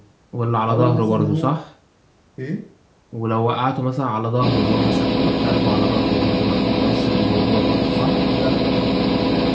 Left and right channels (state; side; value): identical; both; correlation 1.00